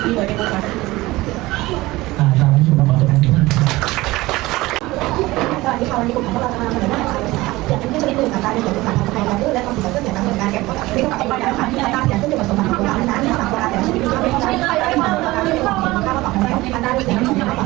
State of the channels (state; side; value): quieter; left; 19.4 dB